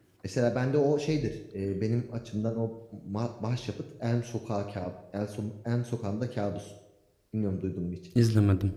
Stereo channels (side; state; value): both; identical; correlation 1.00